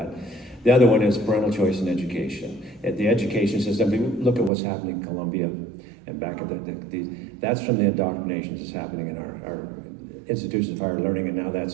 The other one is parental choice in education. At the education system, look at what's happening in Columbia and back at that's from the indoctrination that's happening in our institutions of higher learning, and now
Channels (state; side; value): drops out; left; at 4.5 s